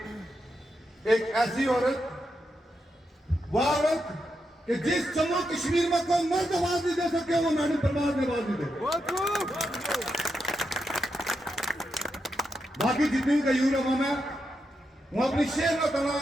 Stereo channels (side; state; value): both; normal; correlation 0.85